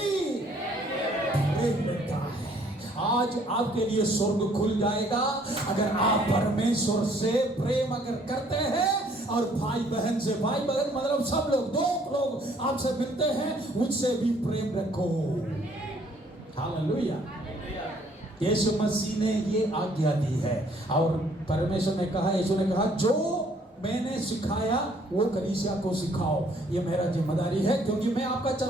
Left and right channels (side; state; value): both; normal; correlation 0.62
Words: प्रेम रखता है। आज आपके लिए स्वर्ग खुल जाएगा अगर आप परमेश्वर से प्रेम अगर करते हैं और भाई बहन से, भाई बहन मतलब सब लोग, दो लोग आपसे मिलते हैं उनसे भी प्रेम रखो। हालेलुया। यीशु मसीह ने ये आज्ञा दी है और परमेश्वर ने कहा, यीशु ने कहा जो मैंने सिखाया वो कलीसिया को सिखाओ। ये मेरा जिम्मेदारी है क्योंकि मैं आपका